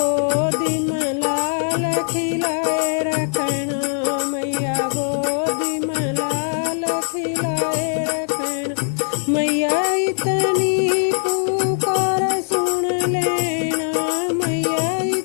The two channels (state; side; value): silent; right; digital silence